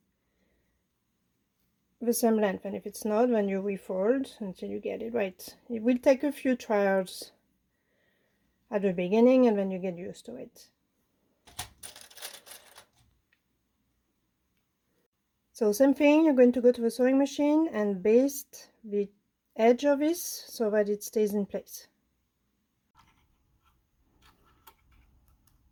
the same length, and if it's not, then you refold until you get it right. It will take a few trials at the beginning and then you get used to it. So same thing, you're going to go to the sewing machine and baste the edge of this so that it stays in place.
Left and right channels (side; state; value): both; identical; correlation 1.00